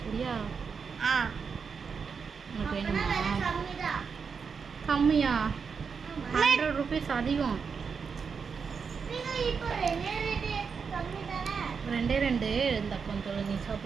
சரியா? உனக்கு வேணுமா? கம்மியா? 100 ருபீஸ் அதிகம். 2 இந்த கொஞ்சம் நீ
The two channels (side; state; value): left; quieter; 5.8 dB